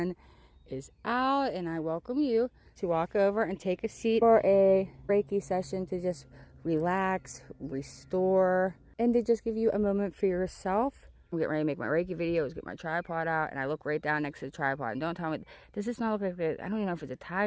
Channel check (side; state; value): both; identical; correlation 1.00